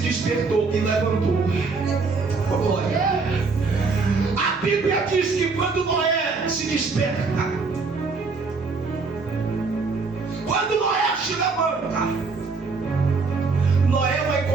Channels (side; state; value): left; quieter; 4.3 dB